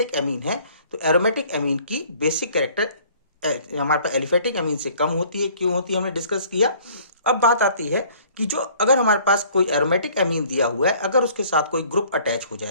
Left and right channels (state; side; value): inverted; both; correlation -0.55